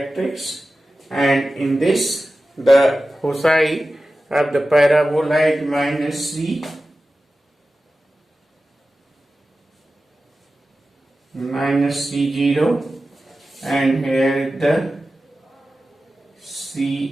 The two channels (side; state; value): both; normal; correlation 0.94